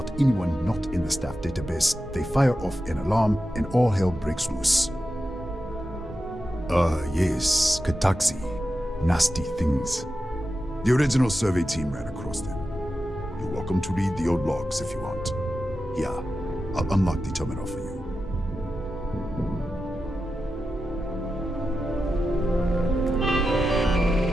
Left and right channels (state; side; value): normal; both; correlation 0.91